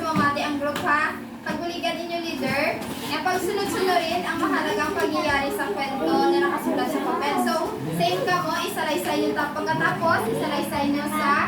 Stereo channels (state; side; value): identical; both; correlation 1.00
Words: ang group ha. Pagbuligan inyo leader, na pagsunod-sunurin ang mahalagang pangyayari sa kwento na nakasulat sa papel. So, same ka mo, isalaysay nyo pagkatapos, isalaysay nyo